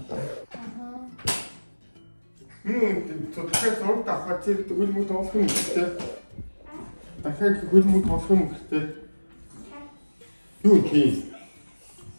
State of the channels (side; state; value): both; inverted; correlation -1.00